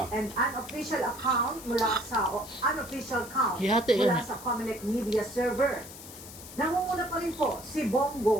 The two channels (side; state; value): left; noise; hiss, 15 dB below the sound